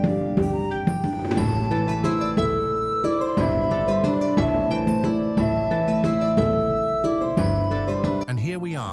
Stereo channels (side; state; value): both; identical; correlation 1.00